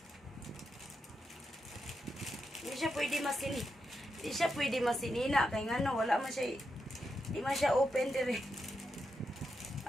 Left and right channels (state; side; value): normal; both; correlation 0.85